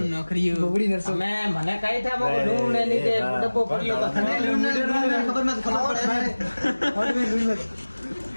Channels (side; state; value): both; inverted; correlation -1.00